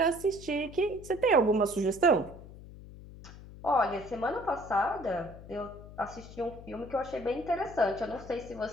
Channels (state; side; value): noise; left; hum, 16 dB below the sound